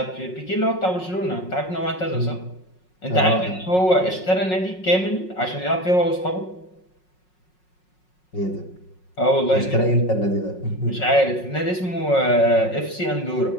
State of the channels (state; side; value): late; right; 5.5 ms